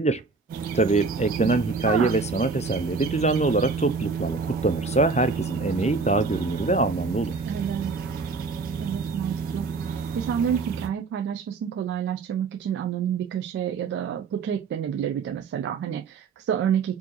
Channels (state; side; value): quieter; left; 4.3 dB